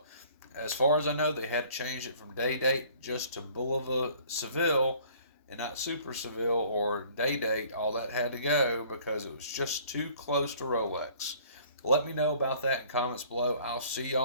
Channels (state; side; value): inverted; both; correlation -0.54